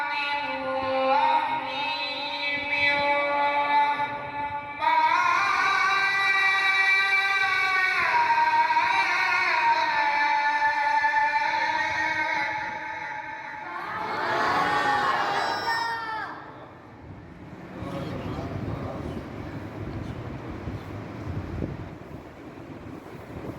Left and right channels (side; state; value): both; identical; correlation 1.00